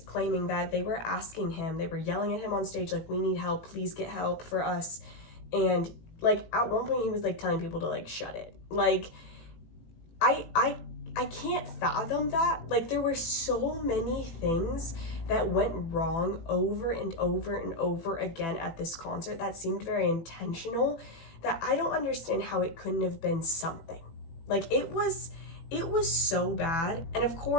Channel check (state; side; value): late; right; 18 ms